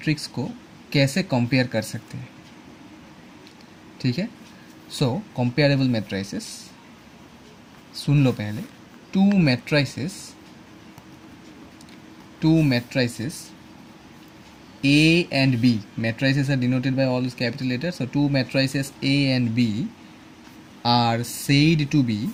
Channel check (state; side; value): identical; both; correlation 1.00